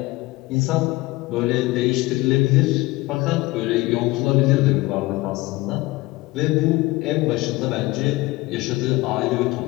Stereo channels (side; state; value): right; quieter; 20.7 dB